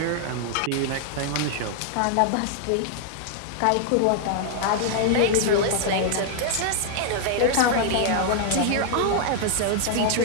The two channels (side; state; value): both; different; correlation -0.01